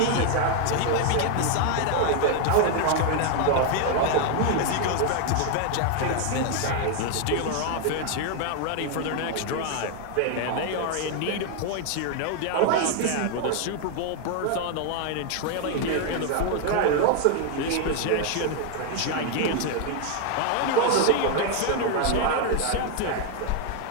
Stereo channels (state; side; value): different; both; correlation 0.00